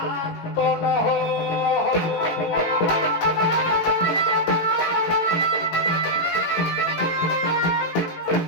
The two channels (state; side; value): late; right; 18 ms